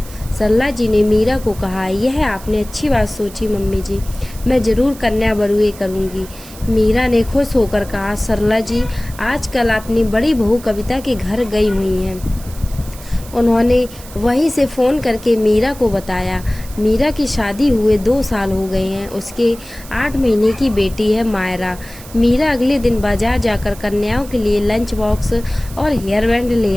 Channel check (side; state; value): right; noise; hiss, 18 dB below the sound